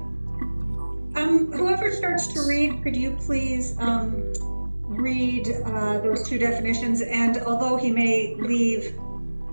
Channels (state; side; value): inverted; both; correlation -1.00